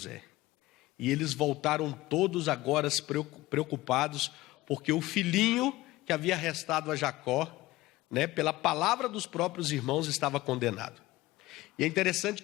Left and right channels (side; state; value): right; quieter; 18.3 dB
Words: E eles voltaram todos agora preocupados, porque o filhinho que havia restado a Jacó, né, pela palavra dos próprios irmãos, estava condenado. E é interessante